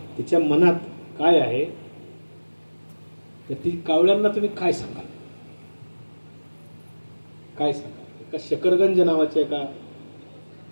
तिच्या मनात काय आहे? तर ती कावळ्यांना तुम्ही काय सांगाल? काय सांगाल? एका शकरगंज नावाच्या एका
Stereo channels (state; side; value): inverted; both; correlation -1.00